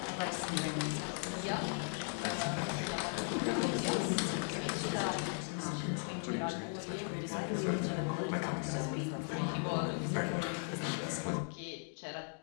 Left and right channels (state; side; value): silent; right; 53 dB below the other